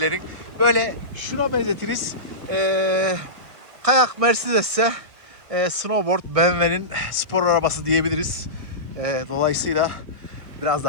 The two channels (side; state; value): left; late; 1.6 ms